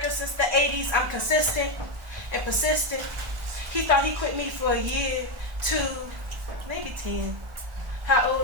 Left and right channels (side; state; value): left; late; 1.2 ms